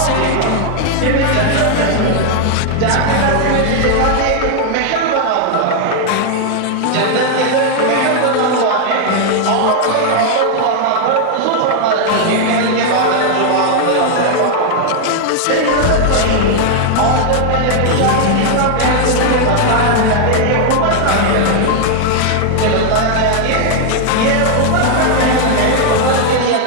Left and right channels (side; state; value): both; different; correlation 0.00